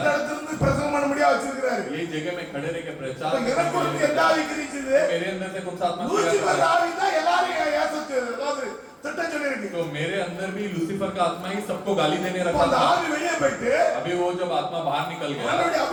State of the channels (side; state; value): both; identical; correlation 1.00